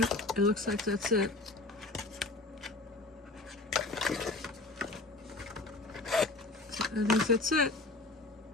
it looks like that's it. I think that's it.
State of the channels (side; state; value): right; quieter; 3.1 dB